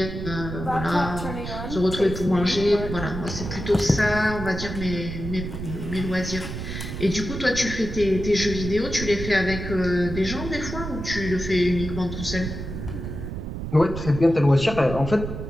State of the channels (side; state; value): right; noise; rumble, 7 dB below the sound